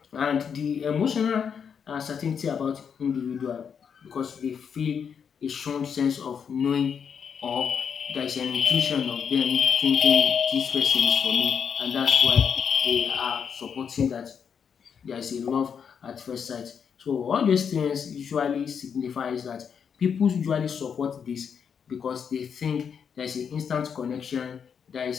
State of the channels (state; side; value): quieter; right; 7.1 dB